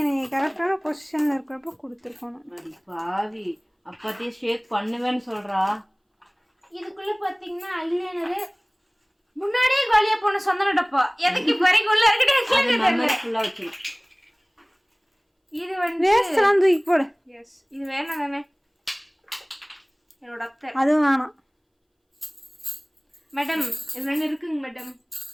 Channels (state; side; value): identical; both; correlation 1.00